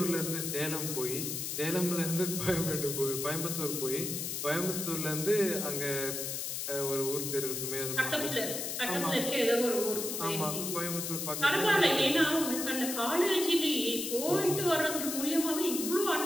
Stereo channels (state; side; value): noise; left; hiss, 3 dB below the sound